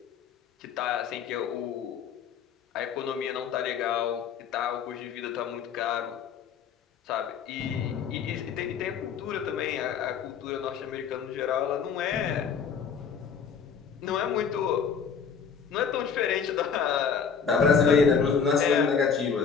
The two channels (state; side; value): quieter; right; 6.6 dB